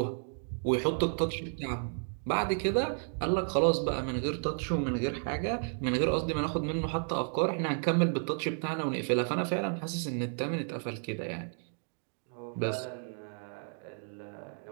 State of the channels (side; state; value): left; silent; 56 dB below the other